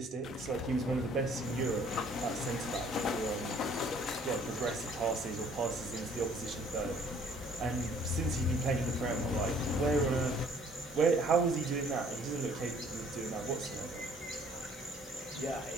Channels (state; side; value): normal; both; correlation 0.58